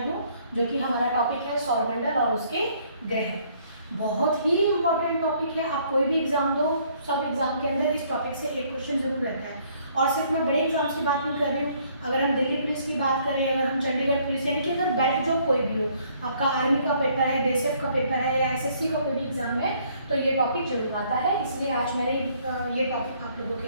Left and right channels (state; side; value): inverted; both; correlation -0.64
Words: जो कि हमारा टॉपिक है सौरमंडल और उसके ग्रह। बहुत ही इम्पोर्टेंट टॉपिक है। आप कोई भी एग्जाम दो, सब एग्जाम के अंदर इस टॉपिक से एक क्वेश्चन जरूर रहता है। और सिर्फ मैं बड़े एग्जाम्स की बात नहीं कर रही हूँ। अगर हम दिल्ली पुलिस की बात करें, अगर हम चंडीगढ़ पुलिस, यानी कि अगर बेल्ट जॉब कोई भी हो, आपका आर्मी का पेपर है, बीएसएफ का पेपर है या एसएससी का कोई भी एग्जाम है, तो ये टॉपिक जरूर आता है। इसलिए आज मैंने ये टॉपिक आप लोगों